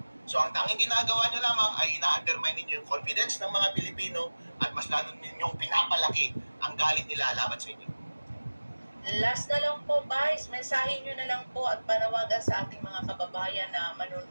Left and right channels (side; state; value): both; inverted; correlation -1.00